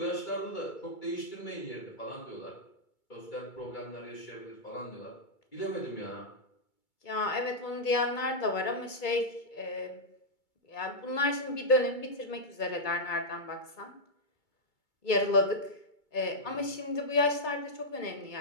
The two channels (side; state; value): right; late; 2.3 ms